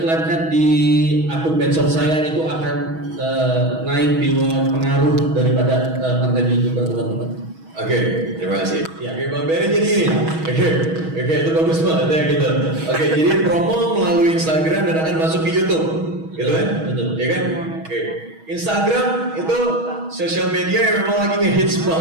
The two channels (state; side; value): late; left; 6.2 ms